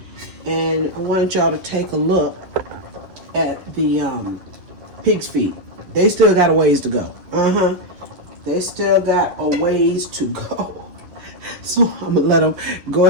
And I want y'all to take a look at the pig's feet. They still got a ways to go. They still got a ways to go. So I'm gonna let them go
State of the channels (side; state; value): left; late; 11 ms